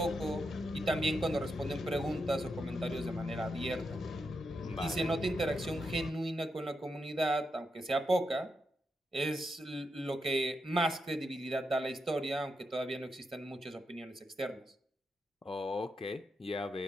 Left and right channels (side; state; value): both; normal; correlation 0.85